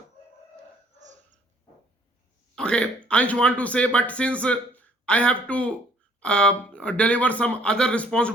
Okay, Ansh want to say, but since I have to deliver some other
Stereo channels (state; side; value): normal; both; correlation 0.61